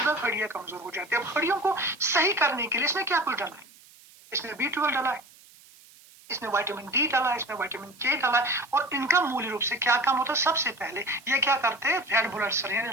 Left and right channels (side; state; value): right; noise; hiss, 25 dB below the sound